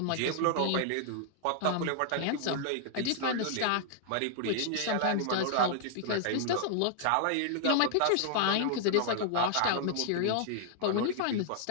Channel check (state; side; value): different; both; correlation -0.01